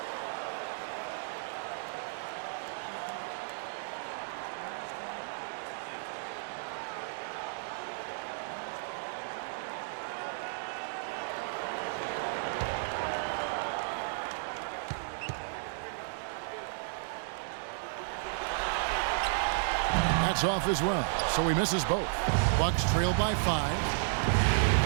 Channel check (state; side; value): silent; left; digital silence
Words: That's off as well, so he misses both. Bucks trail by 5.